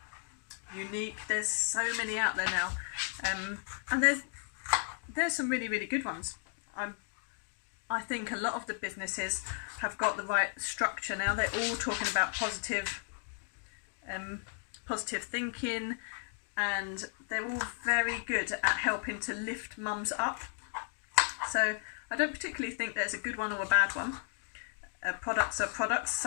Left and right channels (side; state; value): right; silent; 55 dB below the other